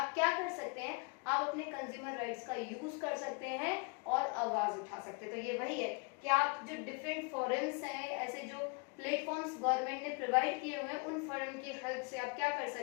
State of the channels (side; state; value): right; quieter; 31.3 dB